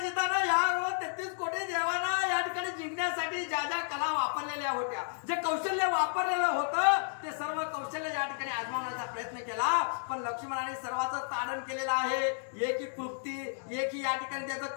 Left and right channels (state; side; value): silent; right; digital silence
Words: या 33 कोटी देवांना या ठिकाणी जिंकण्यासाठी ज्या ज्या कला वापरलेल्या होत्या, जे कौशल्य वापरलेलं होतं ते सर्व कौशल्य या ठिकाणी आजमावण्याचा प्रयत्न केला. पण लक्ष्मणाने सर्वांचं ताडण केलेलं आहे. एकी क्लुप्ती एकी या ठिकाणी त्याचं